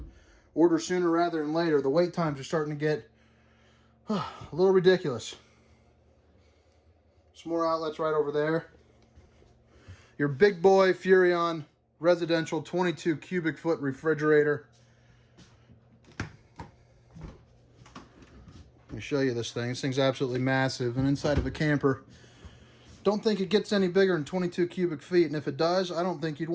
order sooner rather than later. The wait times are starting to get a little ridiculous. Some more outlets right over there. Your big boy Furion residential 22 cubic foot refrigerator. Let me show you this thing. This thing's absolutely massive, and inside of a camper, don't think it gets any bigger than 22 cubic feet, and if it does, I don't think you'd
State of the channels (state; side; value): identical; both; correlation 1.00